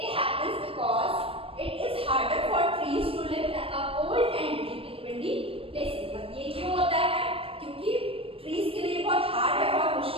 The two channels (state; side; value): late; left; 0.27 ms